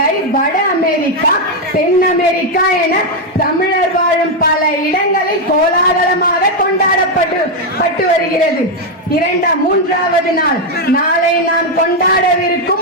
வட அமெரிக்கா, தென் அமெரிக்கா என தமிழர் வாழும் பல இடங்களில் கோலாகலமாக கொண்டாடப்பட்டு வருகிறது. 3வது நாள் நாளை நாம்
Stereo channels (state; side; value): normal; both; correlation 0.03